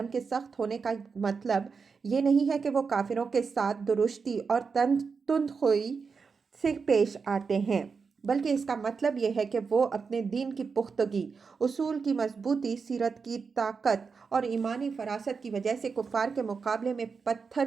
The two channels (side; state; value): left; quieter; 5.3 dB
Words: کے سخت ہونے کا مطلب یہ نہیں ہے کہ وہ کافروں کے ساتھ درشتی اور تندخوئی سے پیش آتے ہیں، بلکہ اس کا مطلب یہ ہے کہ وہ اپنے دین کی پختگی، اصول کی مضبوطی، سیرت کی طاقت اور ایمانی فراست کی وجہ سے کفار کے مقابلے میں